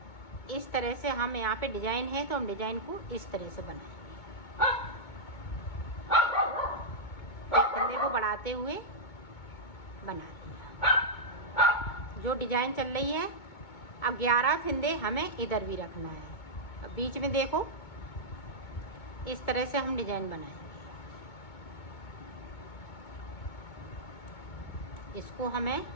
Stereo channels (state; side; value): late; right; 2.2 ms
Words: इस तरह से हम यहाँ पे डिजाइन है तो हम डिजाइन को इस तरह से बनाएंगे। एक फिंदे को बढ़ाते हुए बना लिया जो डिजाइन चल रही है। अब 11 फिंदे हमें इधर भी रखना है। अब बीच में देखो इस तरह से हम डिजाइन बनाएंगे। इसको हमें